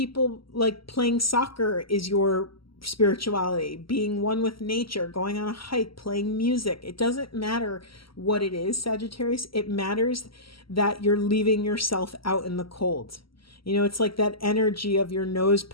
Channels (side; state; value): right; late; 0.75 ms